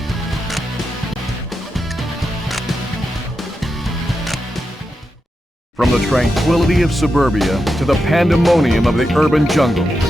From the tranquility of suburbia to the pandemonium of the urban jungle,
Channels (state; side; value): normal; both; correlation 0.88